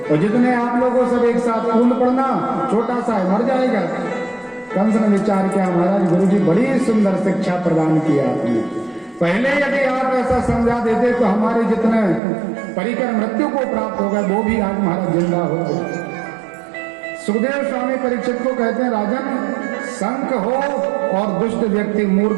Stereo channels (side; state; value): left; drops out; at 12.2 s